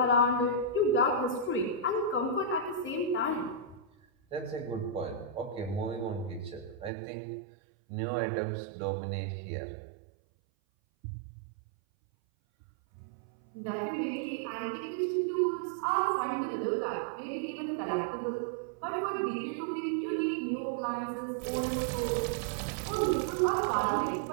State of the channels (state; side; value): drops out; left; at 6.9 s